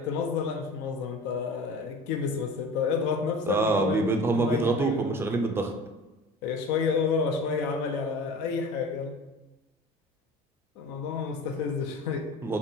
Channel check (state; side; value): normal; both; correlation 0.38